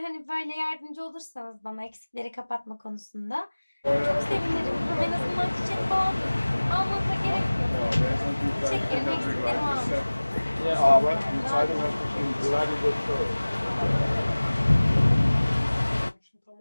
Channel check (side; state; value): both; inverted; correlation -1.00